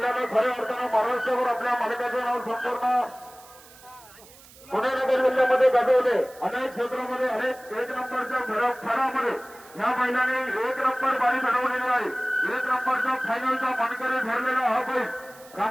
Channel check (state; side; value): noise; right; hiss, 22 dB below the sound